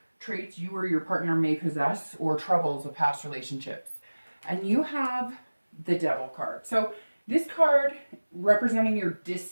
traits you or your partner may possess, or troubles of past relationships. And you have the Devil card. So this card representing your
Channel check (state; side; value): inverted; both; correlation -1.00